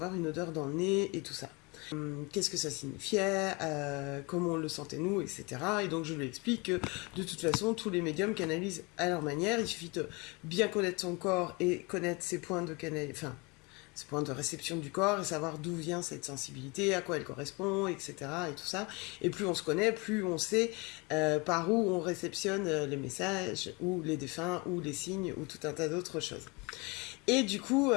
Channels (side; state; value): right; quieter; 27.7 dB